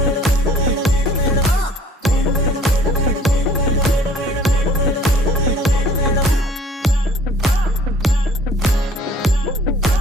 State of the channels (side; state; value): both; normal; correlation 0.54